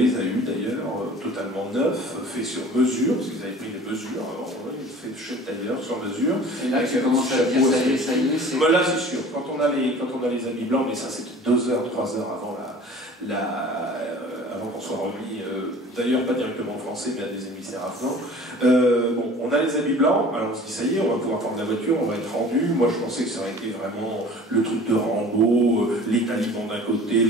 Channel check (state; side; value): normal; both; correlation 0.45